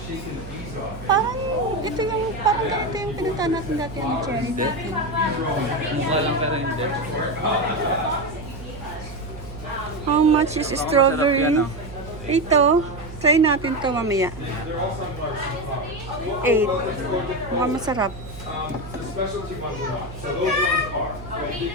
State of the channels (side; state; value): right; noise; hum, 13 dB below the sound